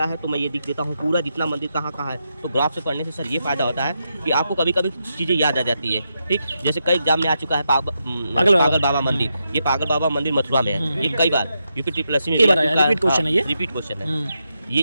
है तो मैं ये लिख देता हूँ पूरा जितना मंदिर कहाँ कहाँ है। तो ग्राफ से पढ़ने से सर ये फायदा होता है कि आपको कभी कभी चीज़ें याद आ जाती है, ठीक। जैसे कई एग्जाम में आ चुका है पागल बाबा मंदिर, ये पागल बाबा मंदिर मथुरा में है, ये कई बार यूपी ट्रिपल में रिपीट क्वेश्चन है, ये रिपीट क्वेश्चन है। ये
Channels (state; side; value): inverted; both; correlation -0.84